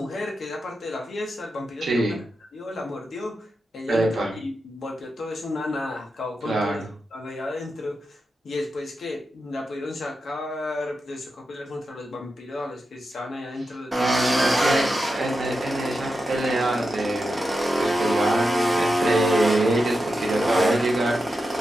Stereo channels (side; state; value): both; normal; correlation 0.89